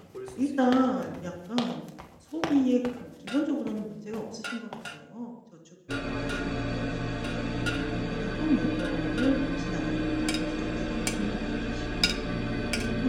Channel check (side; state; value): both; identical; correlation 1.00